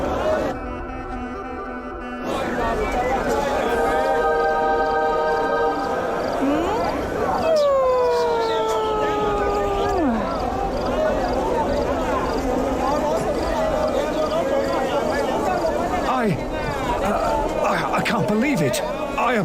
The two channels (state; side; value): identical; both; correlation 1.00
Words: I can't believe it. I